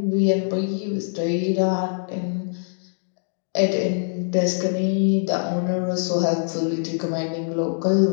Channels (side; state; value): right; silent; digital silence